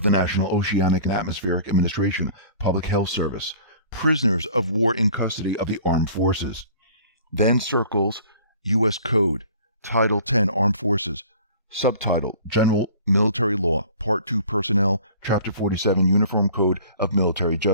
the National Oceanic and Atmospheric Administration, Public Health Service, prisoners of war in custody of the armed forces. Then circles U.S. Code, Title 10, Armed Forces, Subtitle, General Military Law, Part 2, Personnel, Chapter 47, Uniform Code of Military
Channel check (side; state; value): both; inverted; correlation -0.48